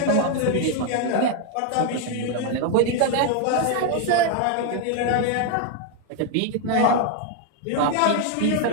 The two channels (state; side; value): different; both; correlation 0.01